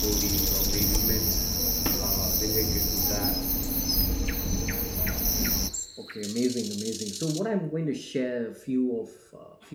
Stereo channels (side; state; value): both; identical; correlation 1.00